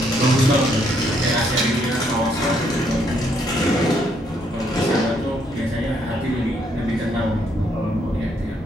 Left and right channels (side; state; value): both; normal; correlation 0.71